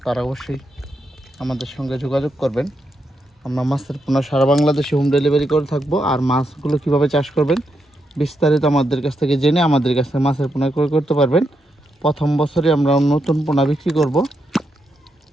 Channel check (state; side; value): normal; both; correlation 0.82